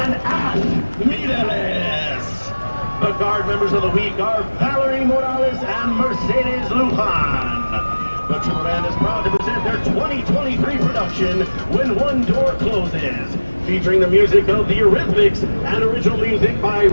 Ash Mireles. The guard members of the week are Valerie Morales and Mercedes Lujan. The Trooper Band is proud to present their 2023 production, When One Door Closes, featuring the music of the Eurythmics and original music by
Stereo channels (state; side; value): inverted; both; correlation -1.00